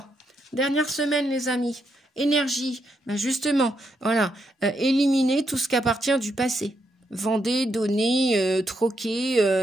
Dernière semaine, les amis. Énergie. Ben justement, voilà. Éliminez tout ce qui appartient du passé. Vendez, donnez,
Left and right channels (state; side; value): normal; both; correlation 0.80